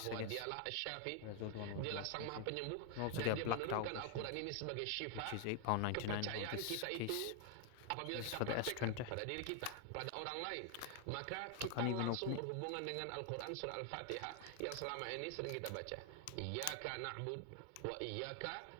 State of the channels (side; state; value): both; different; correlation 0.00